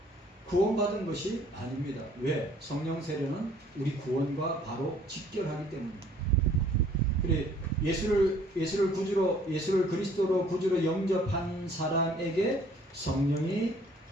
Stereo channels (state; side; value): normal; both; correlation 0.58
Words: 구원받은 것이 아닙니다. 왜? 성령 세례는 우리 구원과 바로 직결하기 때문입니다. 그래 예수를 그리스도로 구주로 영접한 사람에게 성령이